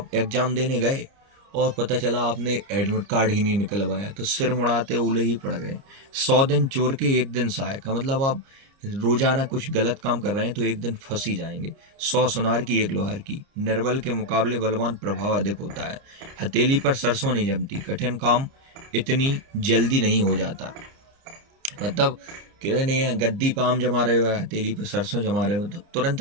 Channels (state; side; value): late; left; 30 ms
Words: एग्जाम देने गए और पता चला आपने एडमिट कार्ड ही नहीं निकलवाया तो सिर मुड़ाते ओले ही पड़ गए। 100 दिन चोर के एक दिन सहायक का, मतलब आप रोजाना कुछ गलत काम कर रहे हैं तो एक दिन फंस ही जाएंगे। 100 सुनार की एक लोहार की, निर्बल के मुकाबले बलवान प्रभाव अधिक होता है। हथेली पर सरसों नहीं जमती, कठिन काम इतनी जल्दी नहीं हो जाता। मतलब कहते नहीं है गद्दी पे आम जमा रहे हो, हथेली पे सरसों जमा रहे हो तो तुरंत